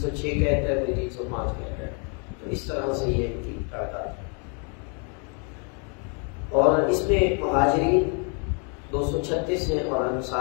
کہتا ہے، کوئی 305 کہتا ہے. تو اس طرح سے یہ ان کی تعداد ہے. اور اس میں مہاجرین 236 ہیں اور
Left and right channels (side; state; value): right; quieter; 38.0 dB